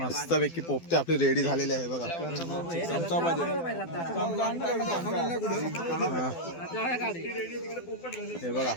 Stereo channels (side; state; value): right; late; 12 ms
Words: पैकी पोपटी आपली रेडी झालेली आहे बघा. हे बघा